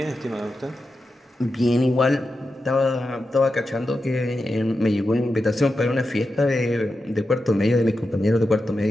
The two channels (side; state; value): both; normal; correlation 0.90